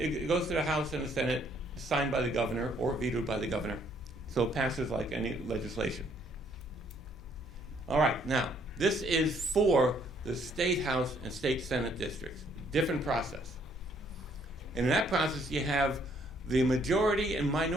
it goes to the House and the Senate, signed by the governor or vetoed by the governor. So it passes like any legislation. All right, now, this is for the state House and state Senate districts. Different process. And in that process, you have the majority and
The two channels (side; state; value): left; noise; hum, 17 dB below the sound